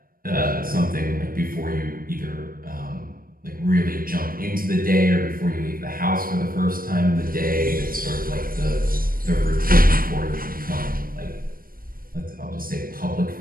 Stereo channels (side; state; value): left; late; 0.41 ms